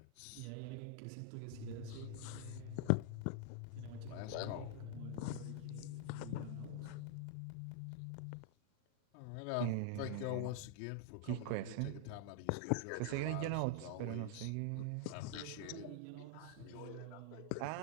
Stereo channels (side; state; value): both; different; correlation 0.00